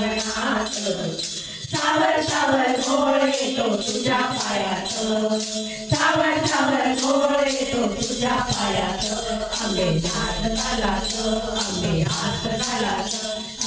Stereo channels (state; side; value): identical; both; correlation 1.00